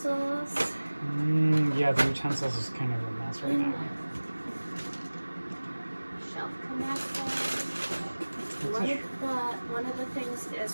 Yeah, the utensils is kind of a mess right now. Shelf connectors. One of the things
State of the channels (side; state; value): both; inverted; correlation -1.00